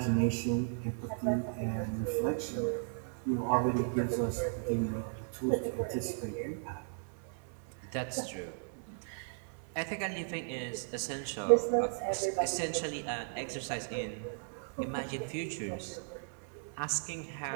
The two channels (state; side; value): silent; left; digital silence